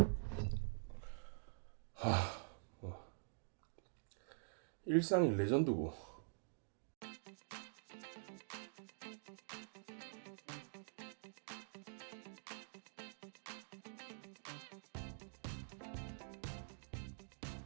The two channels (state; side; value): silent; left; digital silence